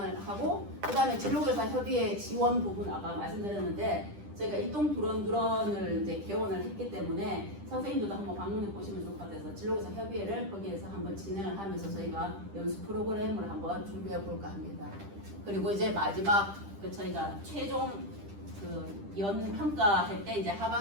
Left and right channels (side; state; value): left; late; 10 ms